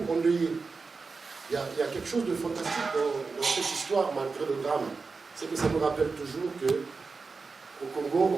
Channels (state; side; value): quieter; left; 4.4 dB